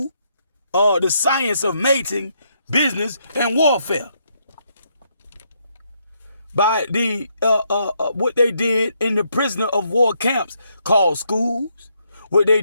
the science of mating, business, and warfare. By the what they did in the prisoner of war camps called schools, what they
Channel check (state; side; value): inverted; both; correlation -0.75